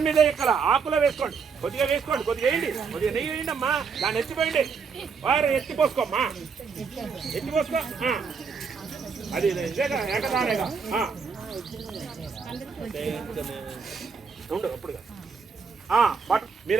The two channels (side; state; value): left; quieter; 5.6 dB